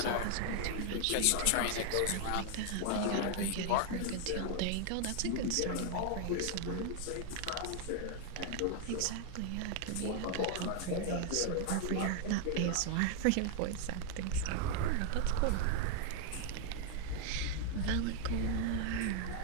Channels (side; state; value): both; different; correlation 0.00